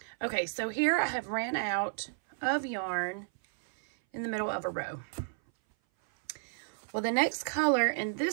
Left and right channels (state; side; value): silent; left; 56 dB below the other